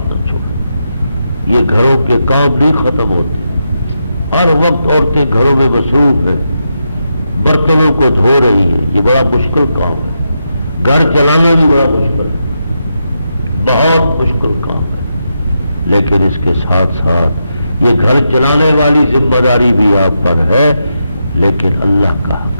نہ چھوڑو۔ یہ گھروں کے کام نہیں ختم ہوتے، ہر وقت عورتیں گھروں میں مصروف ہیں، برتنوں کو دھو رہی ہیں، یہ بڑا مشکل کام ہے، گھر چلانا بھی بڑا مشکل ہے، بہت مشکل کام ہے، لیکن اس کے ساتھ ساتھ یہ گھر چلانے والی ذمہ داری بھی آپ پر ہے، لیکن اللہ کا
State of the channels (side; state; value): both; inverted; correlation -0.85